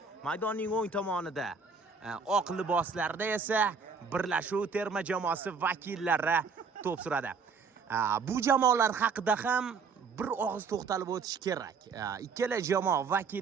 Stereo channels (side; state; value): left; quieter; 5.1 dB